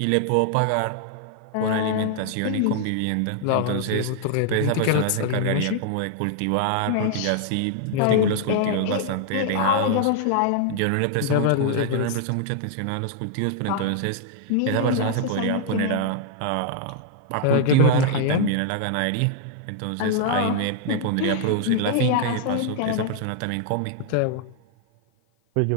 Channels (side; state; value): both; different; correlation -0.01